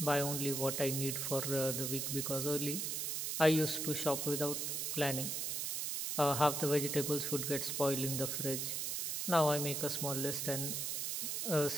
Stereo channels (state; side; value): noise; right; hiss, 1 dB below the sound